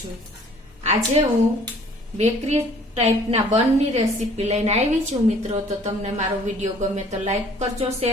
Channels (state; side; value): normal; both; correlation 0.55